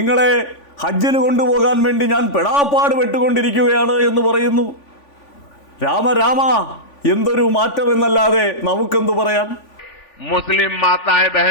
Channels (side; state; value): right; late; 3.5 ms